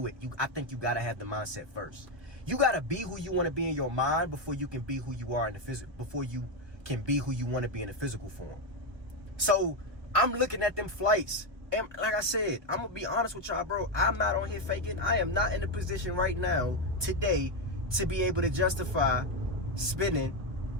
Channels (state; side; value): late; left; 1.3 ms